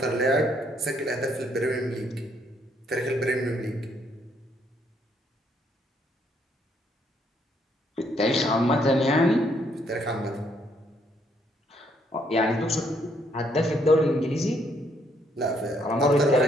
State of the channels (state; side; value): normal; both; correlation 0.71